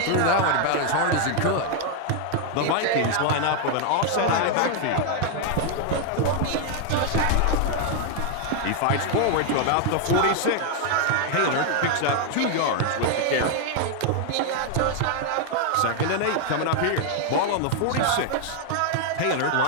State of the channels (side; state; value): both; different; correlation 0.00